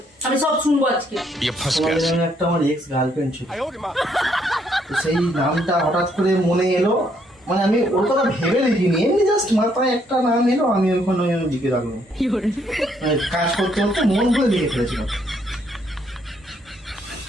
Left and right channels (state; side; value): normal; both; correlation 0.70